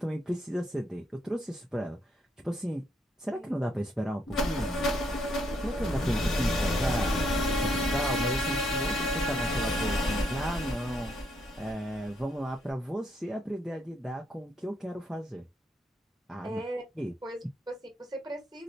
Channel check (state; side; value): normal; both; correlation 0.75